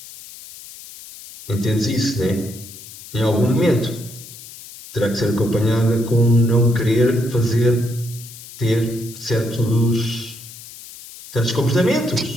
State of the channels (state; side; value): noise; left; hiss, 16 dB below the sound